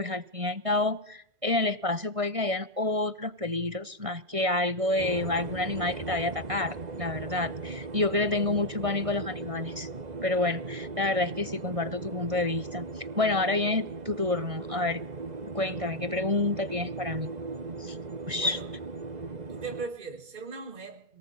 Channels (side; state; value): left; late; 1.6 ms